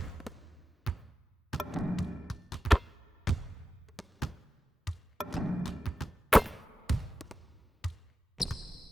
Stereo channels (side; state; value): both; normal; correlation 0.92